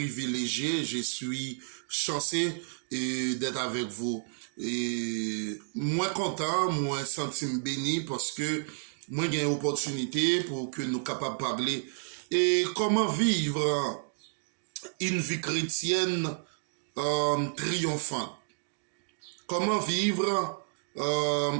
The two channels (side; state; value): left; silent; digital silence